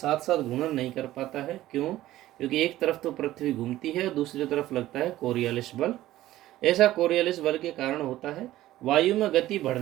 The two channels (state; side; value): quieter; left; 15.0 dB